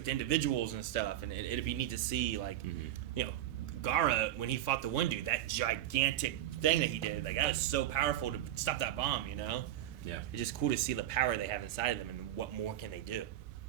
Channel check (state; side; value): quieter; left; 12.7 dB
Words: to individuals and stuff. And it'd be neat to see like, you know, Gaara when he fought the one dude, that gigantic thing that he did, like that was so powerful to stop that bomb. You know. Yeah. It's just cool to see the power they have inside of them and what more can they do.